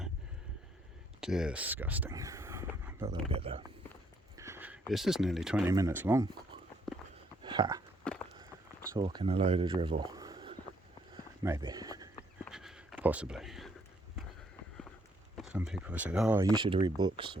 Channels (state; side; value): normal; both; correlation 0.69